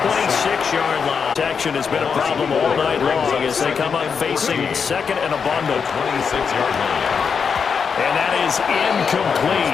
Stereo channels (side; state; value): right; quieter; 6.2 dB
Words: line. Protection has been a problem all night long as they come up facing second and a bundle. 26-yard line. And that is